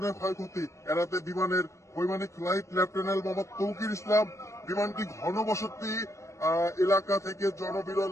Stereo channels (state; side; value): late; right; 0.14 ms